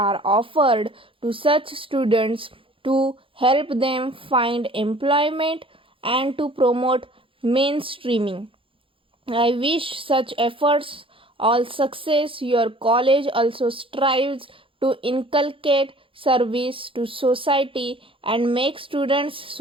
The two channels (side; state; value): left; late; 0.26 ms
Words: offered to such students to help them find employment and to promote mainstreaming. I wish such efforts all success. Your college also strives to inculcate service to society and make students